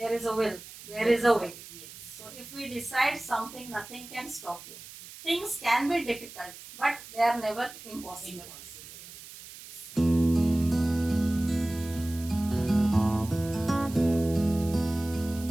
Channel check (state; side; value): noise; right; hiss, 16 dB below the sound